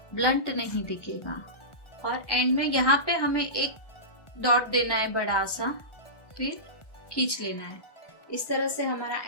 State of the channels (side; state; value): right; late; 1.4 ms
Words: ब्लंट नहीं दिखेगा। और एंड में यहाँ पे हमें एक डॉट देना है बड़ा सा, फिर खींच लेना है। इस तरह से हमारा